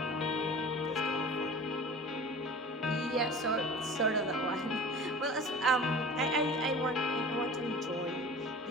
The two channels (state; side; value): normal; both; correlation 0.39